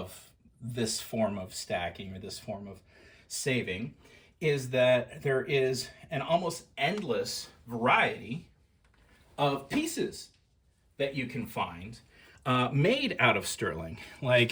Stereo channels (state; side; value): identical; both; correlation 1.00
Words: this form of stacking or this form of saving is that there is an almost endless variety of pieces that you can find made out of sterling.